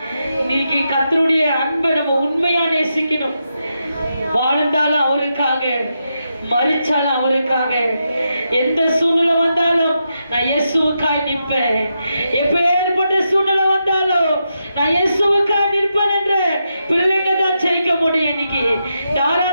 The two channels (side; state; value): both; inverted; correlation -0.85